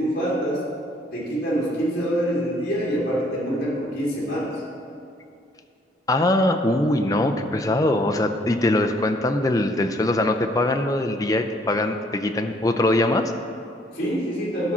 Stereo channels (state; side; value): normal; both; correlation 0.63